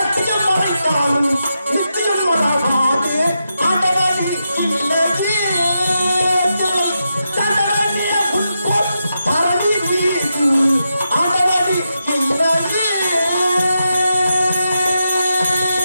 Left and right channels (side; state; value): both; inverted; correlation -0.86